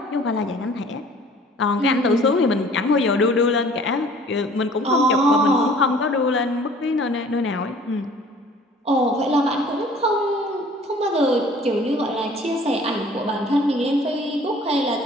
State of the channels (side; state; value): both; normal; correlation 0.51